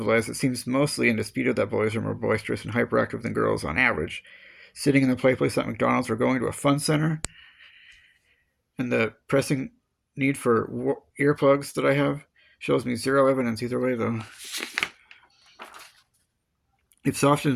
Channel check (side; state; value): both; identical; correlation 1.00